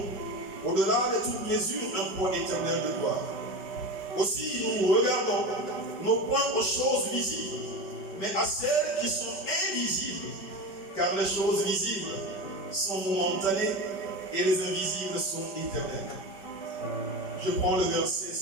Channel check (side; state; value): right; late; 5.2 ms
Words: au-delà de toute mesure, un poids éternel de gloire. Aussi, nous regardons non point aux choses visibles, mais à celles qui sont invisibles, car les choses visibles sont momentanées et les invisibles sont éternelles. Je prends le verset